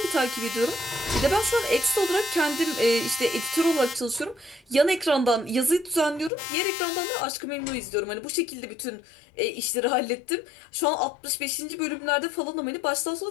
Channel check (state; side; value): drops out; right; at 6.3 s